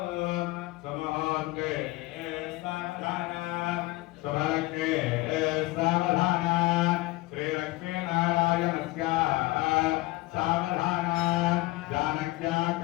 సుముహూర్తే సావధాన శుభకే సావధాన శ్రీ లక్ష్మీనారాయణ సావధాన జానక్యా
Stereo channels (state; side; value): quieter; right; 20.1 dB